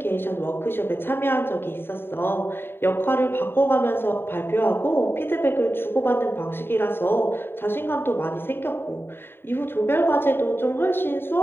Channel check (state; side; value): late; right; 0.11 ms